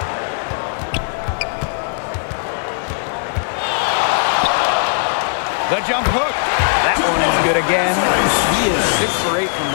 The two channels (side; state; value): right; silent; digital silence